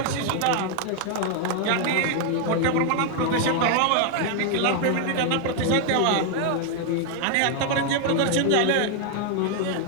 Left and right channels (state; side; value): different; both; correlation 0.00